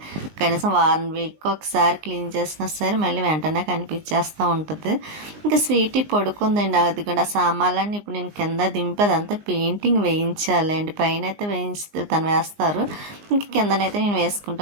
కనీసం వారం వీక్ ఒకసారి క్లీన్ చేసినా సరే మళ్ళీ వెంటనే కనిపించేస్తూ ఉంటుంది. ఇంకా స్వీటీ పడుకుందండి. అది కూడా సామాన్లన్నీ ఇప్పుడు నేను కింద దింపేది అంతా పెయింటింగ్ వేయించాలండి. పైన అయితే తను వేస్తారు, ఇంకా కిందనైతే నేను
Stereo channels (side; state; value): left; late; 19 ms